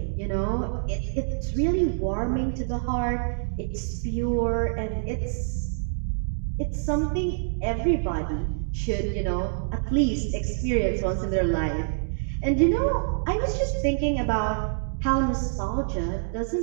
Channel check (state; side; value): silent; left; digital silence